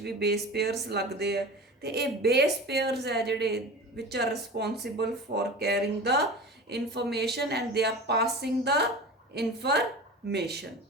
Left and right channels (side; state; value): both; normal; correlation 0.33